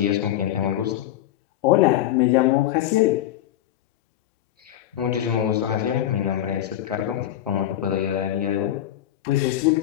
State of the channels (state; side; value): quieter; right; 12.4 dB